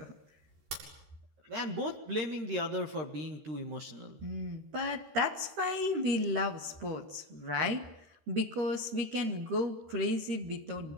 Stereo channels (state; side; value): late; left; 13 ms